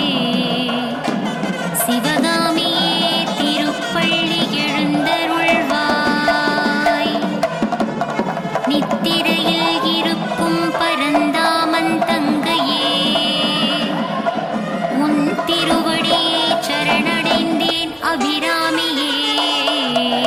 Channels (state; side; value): identical; both; correlation 1.00